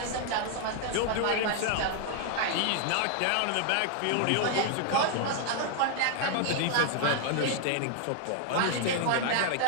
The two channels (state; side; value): different; both; correlation 0.00